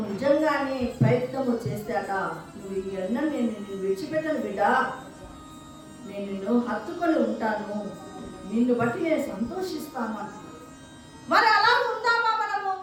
నిజంగానే ప్రయత్నము చేస్తాట, నువ్వు ఇవన్నీ నేను విడిచిపెట్టను బిడ్డ, నేను నిన్ను హత్తుకొని ఉంటాను, నిన్ను బట్టి నేను సంతోషిస్తాను అంటున్నాడు. మరి అలా ఉందామా మనము?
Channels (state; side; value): identical; both; correlation 1.00